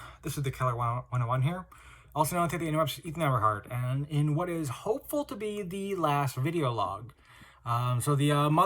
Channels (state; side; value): identical; both; correlation 1.00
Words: This is the Keller 101 here, also known as the interrupts Ethan Everhart, and in what is hopeful to be the last video log. So the